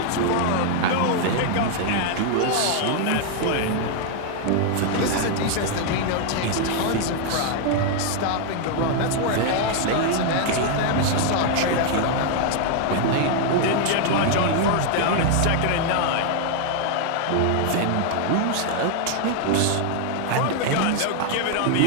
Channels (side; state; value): both; different; correlation 0.00